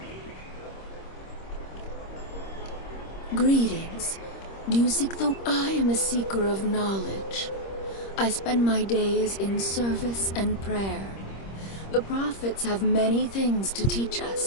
Greetings. Do you seek the... I am a seeker of knowledge. I spend my days in service and prayer. The prophets have many things to teach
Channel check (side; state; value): right; late; 26 ms